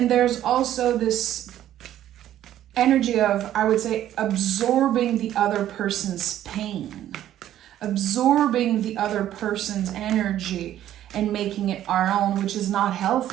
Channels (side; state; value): left; quieter; 12.1 dB